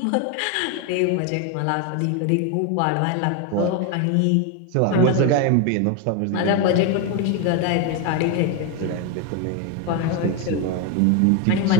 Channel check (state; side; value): different; both; correlation 0.01